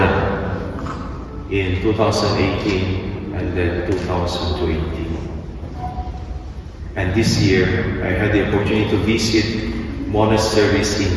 in 2018 and then 2020. And this year, I had the opportunity to visit monasteries in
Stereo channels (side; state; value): both; identical; correlation 1.00